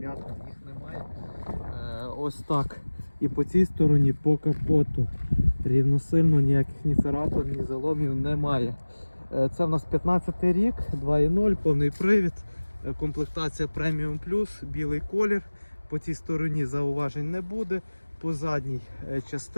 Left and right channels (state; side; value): inverted; both; correlation -1.00